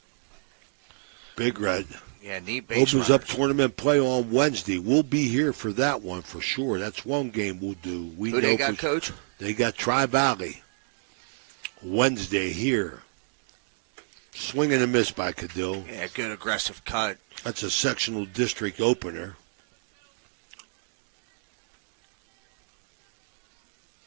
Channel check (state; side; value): silent; left; digital silence